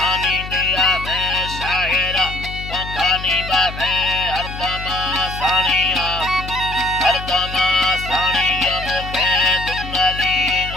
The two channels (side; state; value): left; noise; hum, 10 dB below the sound